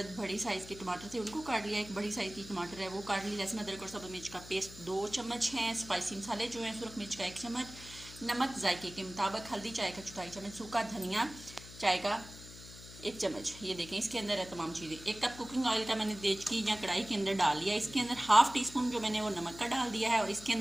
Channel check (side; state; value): left; noise; hum, 16 dB below the sound